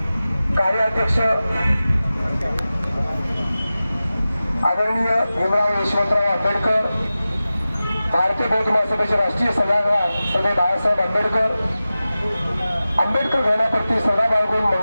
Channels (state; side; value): inverted; both; correlation -0.95